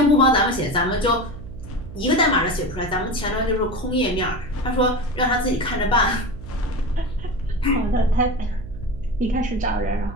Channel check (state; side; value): noise; right; hum, 13 dB below the sound